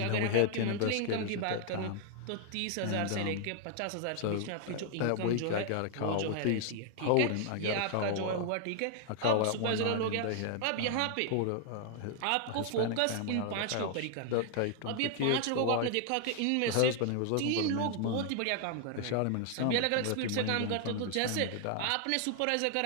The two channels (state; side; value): different; both; correlation 0.00